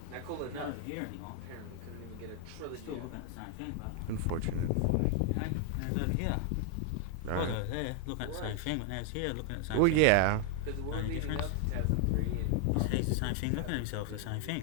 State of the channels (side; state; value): both; different; correlation 0.00